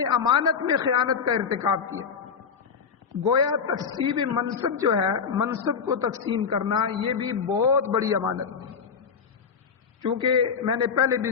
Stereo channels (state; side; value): quieter; right; 6.2 dB